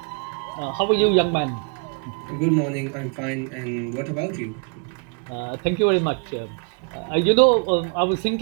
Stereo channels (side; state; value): left; quieter; 39.8 dB